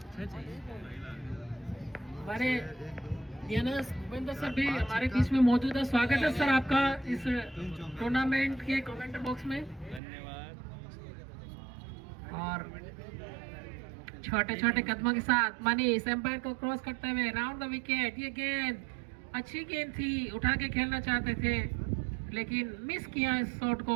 हमारे डीएनएस भूपेंद्र सर भी हमारे बीच में मौजूद है। स्वागत है सर आपका इस टूर्नामेंट के कमेंट बॉक्स में। और छोटे छोटे कदमों के साथ मनीष एम्पायर को क्रॉस करते हुए राउंड द विकेट। ये गेंद अच्छी गेंद थी, उठा के खेलना चाहते थे लेकिन मिस किया इस शॉट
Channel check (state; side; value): drops out; left; at 10.0 s